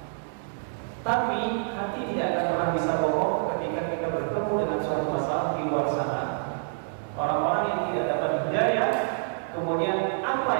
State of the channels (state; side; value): silent; left; 60 dB below the other